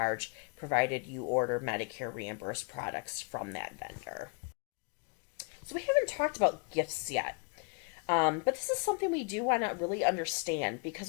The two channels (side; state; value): right; quieter; 36.0 dB